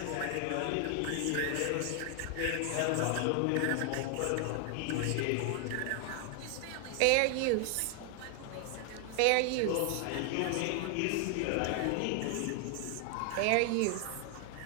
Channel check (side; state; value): both; different; correlation 0.00